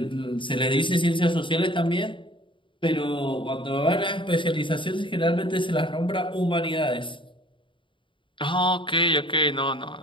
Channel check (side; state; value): right; late; 0.24 ms